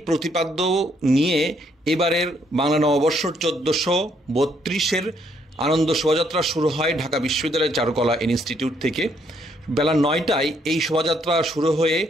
প্রতিপাদ্য নিয়ে এবারের বাংলা নববর্ষ 1432-এর আনন্দ শোভাযাত্রা শুরু হয় ঢাকা বিশ্ববিদ্যালয়ের চারুকলা ইনস্টিটিউট থেকে। বেলা 9টায় এই শোভাযাত্রা শুরু হয়ে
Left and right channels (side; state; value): both; normal; correlation 0.70